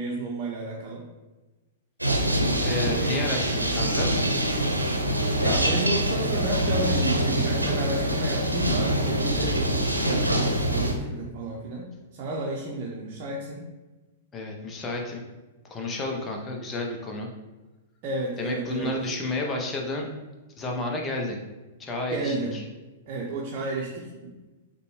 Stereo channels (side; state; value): both; inverted; correlation -0.43